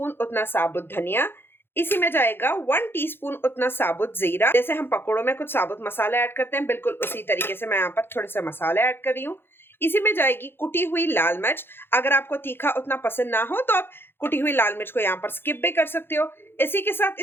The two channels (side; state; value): right; late; 0.10 ms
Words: उतना साबुत धनिया। इसी में जाएगा 1 टीस्पून उतना साबुत जीरा। जैसे हम पकोड़ों में कुछ साबुत मसाले ऐड करते हैं, बिल्कुल उसी तरीके से मैं यहाँ पर थोड़े से मसाले ऐड कर रही हूँ। इसी में जाएगी कुटी हुई लाल मिर्च। अगर आपको तीखा उतना पसंद ना हो तो आप कुटी हुई लाल मिर्च को यहाँ पर स्किप भी कर सकते हो। इसी के साथ